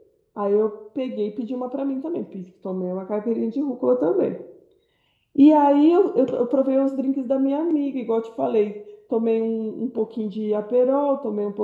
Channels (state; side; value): identical; both; correlation 1.00